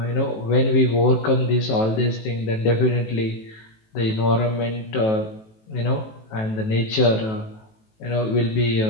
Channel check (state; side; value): late; right; 18 ms